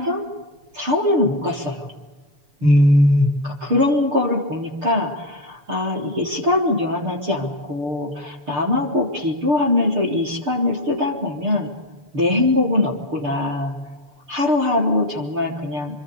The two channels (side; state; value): left; late; 6.9 ms